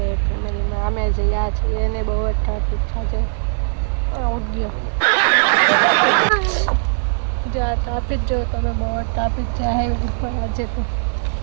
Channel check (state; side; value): silent; left; 57 dB below the other